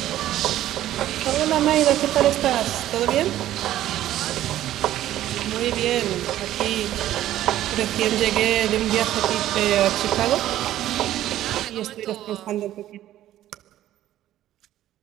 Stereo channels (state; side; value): quieter; left; 13.2 dB